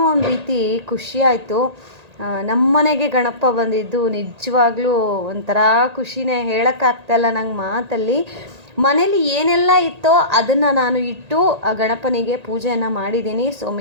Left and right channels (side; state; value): left; late; 1.8 ms